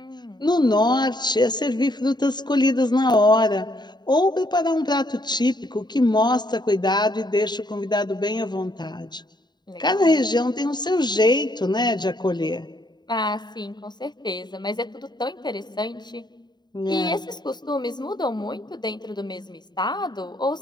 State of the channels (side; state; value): right; late; 0.21 ms